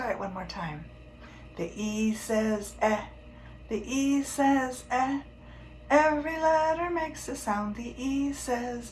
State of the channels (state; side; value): identical; both; correlation 1.00